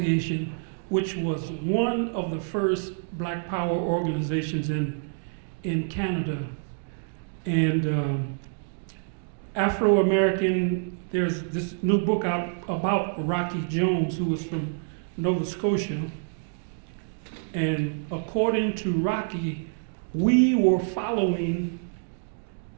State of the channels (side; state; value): left; silent; digital silence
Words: which was one of the first Black Power organizations in Canada. And AfroAmerican, there's this new book out about Rocky Jones, who was from Nova Scotia. And according to Rocky, we were following